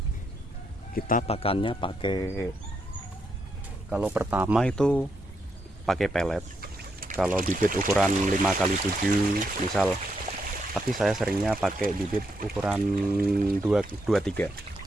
Kita pakannya pakai, kalau pertama itu pakai pelet. Kalau bibit ukuran 5 kali 7 misal, tapi saya seringnya pakai bibit ukuran 23.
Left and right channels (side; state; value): both; normal; correlation 0.79